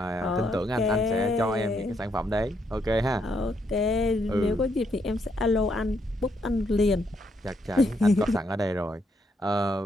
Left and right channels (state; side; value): normal; both; correlation 0.76